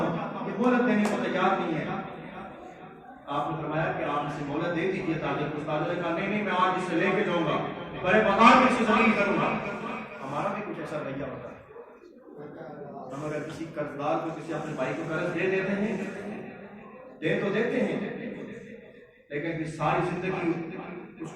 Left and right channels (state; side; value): identical; both; correlation 1.00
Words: یہ مہلت دینے کو تیار نہیں ہے۔ آپ نے فرمایا کہ آپ اسے مہلت دے دیجیے تاجر کو۔ تاجر نے کہا نہیں میں آج اسے لے کے جاؤں گا، بڑے مقام میں اسے ذلیل کروں گا۔ ہمارا بھی کچھ ایسا رویہ ہوتا ہے، ہم اگر کسی قرضدار کو کسی اپنے بھائی کو قرض دے دیتے ہیں، دے تو دیتے ہیں، لیکن پھر ساری زندگی اس